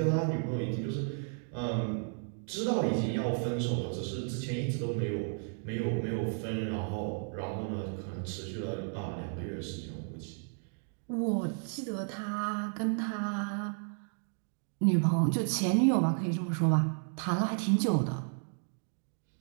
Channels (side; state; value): left; silent; 56 dB below the other